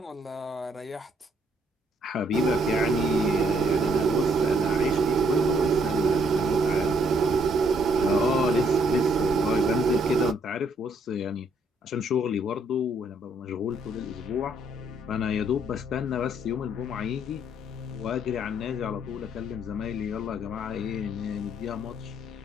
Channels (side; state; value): both; normal; correlation 0.68